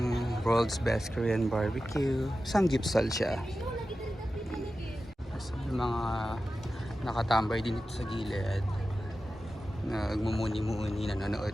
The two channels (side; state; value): both; normal; correlation 0.93